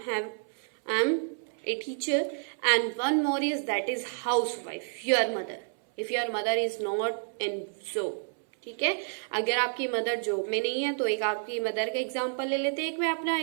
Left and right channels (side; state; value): left; silent; 58 dB below the other